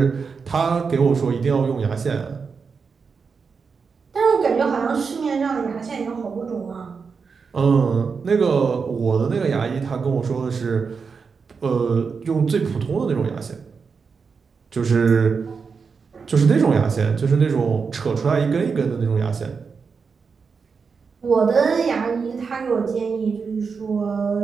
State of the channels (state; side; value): quieter; left; 5.4 dB